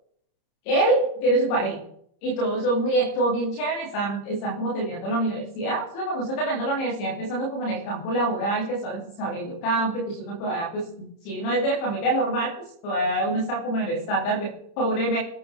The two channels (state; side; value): late; right; 30 ms